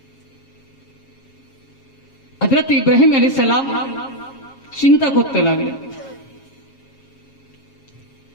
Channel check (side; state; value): right; late; 7.4 ms